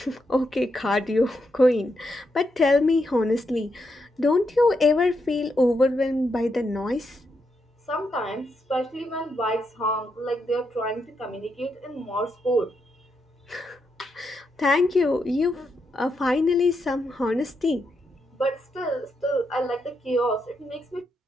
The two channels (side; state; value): both; normal; correlation 0.82